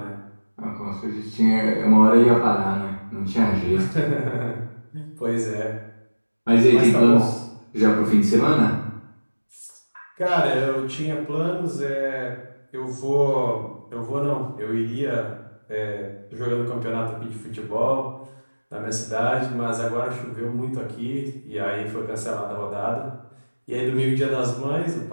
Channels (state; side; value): inverted; both; correlation -1.00